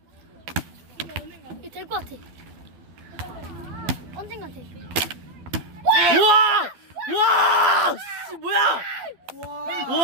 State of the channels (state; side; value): late; left; 12 ms